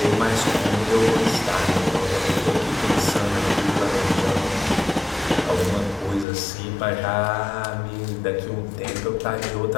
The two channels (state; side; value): drops out; right; at 6.2 s